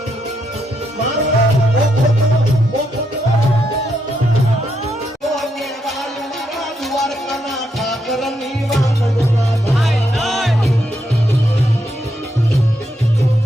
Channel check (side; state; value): both; normal; correlation 0.80